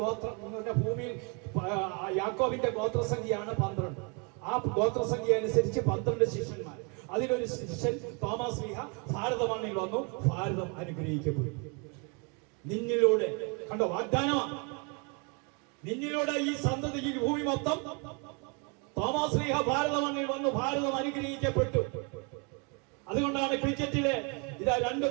ഗോത്രം എന്ന് പറഞ്ഞാൽ ഭൂമിയിൽ യാക്കോബിന്റെ ഗോത്രസംഖ്യയാണ് 12. ആ ഗോത്രസംഖ്യ അനുസരിച്ച് 12 ശിഷ്യന്മാർ. അതിലൊരു ശിഷ്യൻ തോമസ് ലീഹ ഭാരത മണ്ണിൽ വന്നു. ഭാരതം അനുഗ്രഹിക്കപ്പെടും. നിന്നിലൂടെ കണ്ടോ, വാഗ്ദാനമാണ്. നിന്നിലൂടെ ഈ സന്തതിക്ക് ഭൂമി മൊത്തം. തോമസ് ലീഹ ഭാരത മണ്ണിൽ വന്നു. ഭാരതം അനുഗ്രഹിക്കപ്പെട്ടു. അതുകൊണ്ടാണ് ക്രിക്കറ്റിലെ ഇതാ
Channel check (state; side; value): quieter; left; 33.0 dB